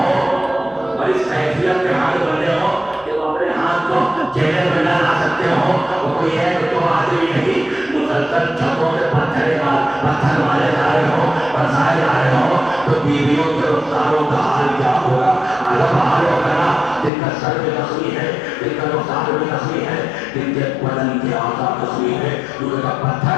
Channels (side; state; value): right; drops out; at 17.1 s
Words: اور اس کیفیت میں ہاتھ بندھے ہوں کہ وہ اپنے ہاتھ کو چہرے میں نہ لا سکتے ہوں، تو کوئی ہے کہ تو آدمی نہیں مسلسل چھتوں سے پتھر مارے جا رہے ہو، برسائے جا رہے ہو، تو بیویوں کے رخساروں کا حال کیا ہوگا؟ الگ حال ہوگا نا، جن کا سر بھی زخمی ہے، جن کا رخسار بھی زخمی ہے، جن کے بدن کے اعضاء زخمی ہے، کیونکہ جب